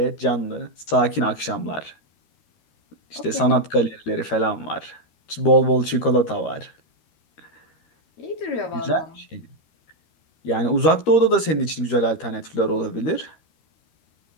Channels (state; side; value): late; right; 13 ms